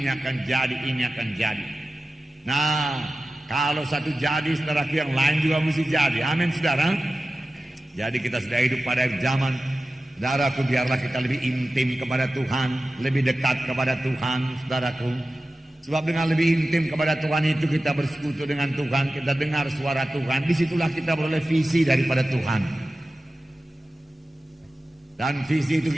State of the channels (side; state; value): both; normal; correlation 0.95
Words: akan jadi, ini akan jadi. Nah, kalau satu jadi, saudaraku, yang lain juga mesti jadi. Amin, saudara. Jadi kita sudah hidup pada zaman, saudaraku, biarlah kita lebih intim kepada Tuhan, lebih dekat kepada Tuhan, saudaraku. Sebab dengan lebih intim kepada Tuhan itu kita bersekutu dengan Tuhan, kita dengar suara Tuhan. Disitulah kita beroleh visi daripada Tuhan. Dan visi itu